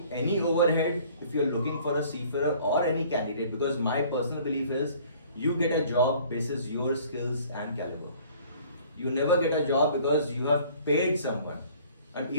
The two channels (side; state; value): both; inverted; correlation -0.53